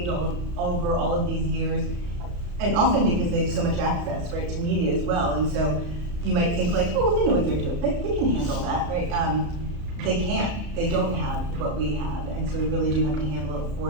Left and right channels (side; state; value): left; late; 34 ms